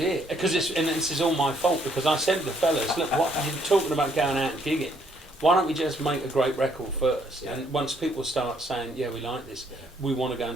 Because this is all my fault, because I said to the fellas, look, what you're talking about going out and gigging. Why don't we just make a great record first? Yeah. And once people start saying, yeah, we like this, we want to go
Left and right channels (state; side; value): normal; both; correlation 0.68